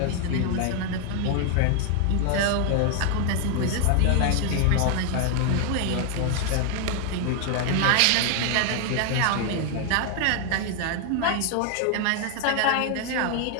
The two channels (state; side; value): different; both; correlation 0.00